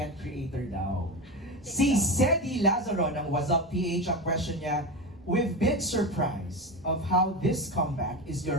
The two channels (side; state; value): both; normal; correlation 0.21